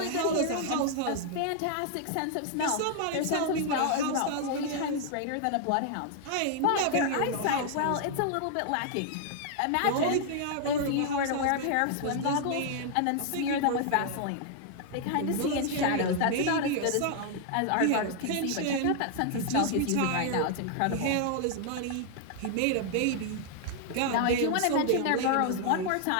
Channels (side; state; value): both; different; correlation 0.00